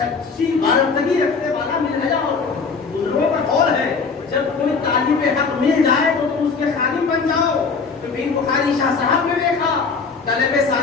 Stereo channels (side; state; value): right; quieter; 4.9 dB